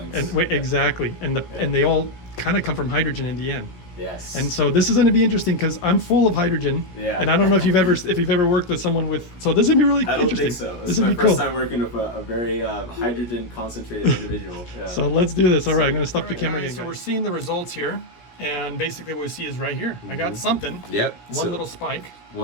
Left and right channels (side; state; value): right; late; 16 ms